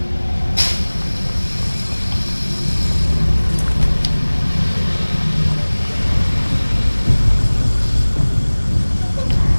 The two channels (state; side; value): inverted; both; correlation -1.00